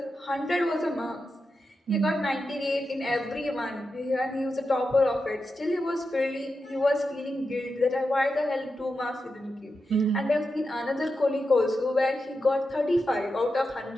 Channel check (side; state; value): both; normal; correlation 0.89